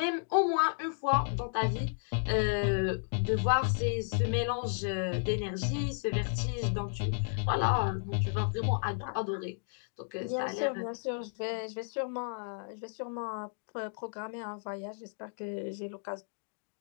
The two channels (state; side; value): silent; right; digital silence